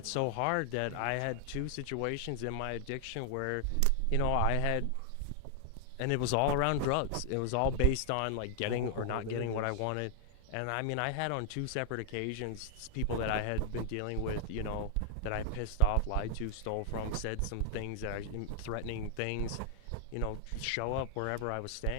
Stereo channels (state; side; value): different; both; correlation 0.00